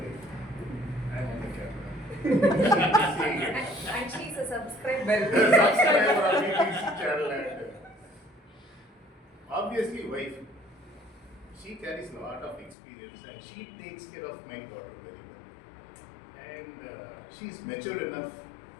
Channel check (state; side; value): drops out; right; at 12.8 s